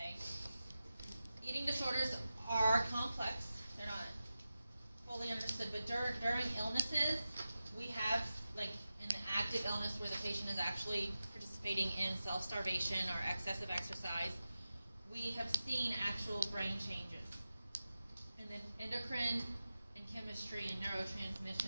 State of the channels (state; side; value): inverted; both; correlation -0.93